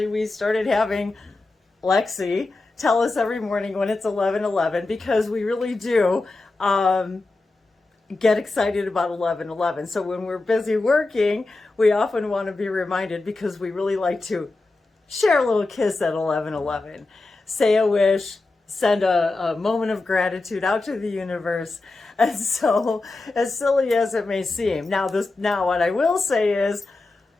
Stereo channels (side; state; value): right; quieter; 3.3 dB